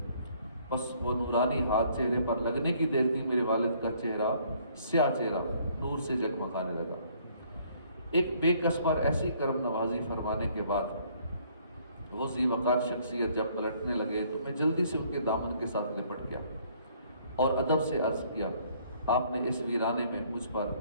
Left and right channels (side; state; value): both; inverted; correlation -0.62